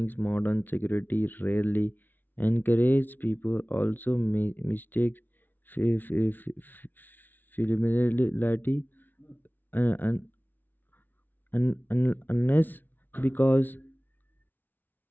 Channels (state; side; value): late; right; 0.088 ms